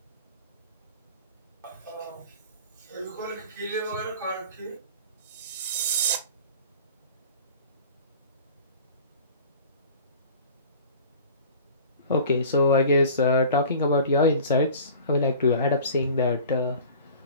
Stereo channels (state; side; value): inverted; both; correlation -0.43